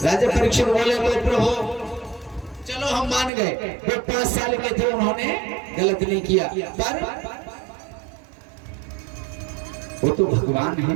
परीक्षित बोले तो प्रभु चलो हम मान गए, वो 5 साल के थे, उन्होंने गलत नहीं किया, पर वो तो भगवान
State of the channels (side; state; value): left; drops out; at 3.3 s